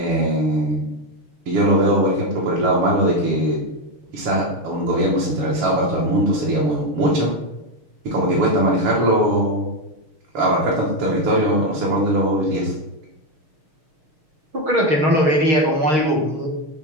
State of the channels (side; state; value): left; late; 6.5 ms